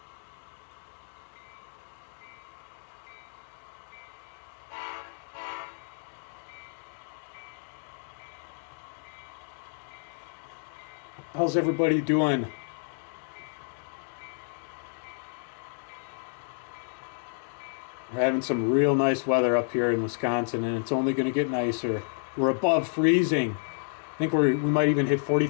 How's everybody doing? We're having some real nice weather up here in Wisconsin, and it's only going to get nicer. We're above freezing. I think we might even hit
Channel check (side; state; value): right; silent; digital silence